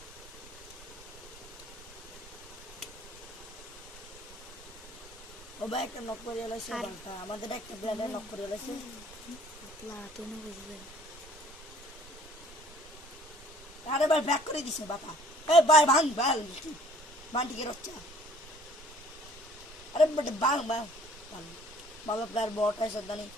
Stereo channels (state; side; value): normal; both; correlation 0.56